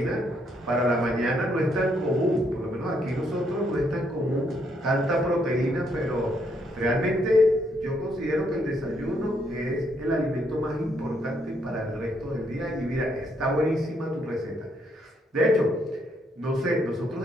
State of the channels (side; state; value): both; normal; correlation 0.73